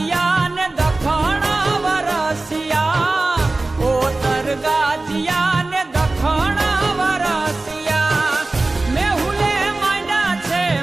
ને દખણ વરસિયા, ઓતર ગાજિયા ને દખણ વરસિયા. મેહુલે માંડ્યા છે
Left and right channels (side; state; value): left; quieter; 3.1 dB